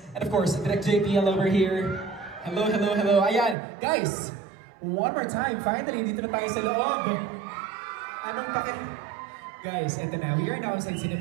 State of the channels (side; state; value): left; drops out; at 3.6 s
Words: and of course, Direct JPL over here. Hello, hello, hello. Ayan, guys! One more time, finally, dito na tayo sa loob. Anong Guys, eto na. We are now inside